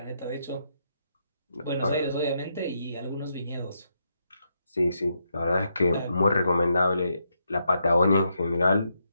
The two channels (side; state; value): both; inverted; correlation -0.80